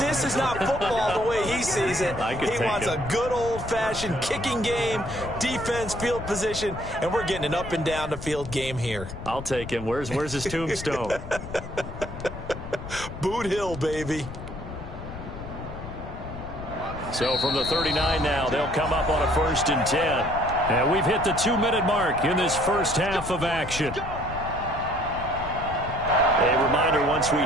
is not football the way he sees it. He wants a good old-fashioned kicking game, defense, field position, and we're getting an up and down the field game here. I'll take him. Where's his tombstone? Boot Hill, baby. So from the 39 now, they'll come up on a 1st and 10. And we've hit the 2-minute mark in this first half of action. A reminder, once we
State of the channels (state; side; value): noise; left; rumble, 10 dB below the sound